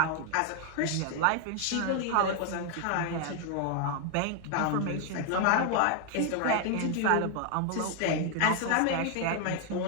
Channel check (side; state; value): both; different; correlation 0.00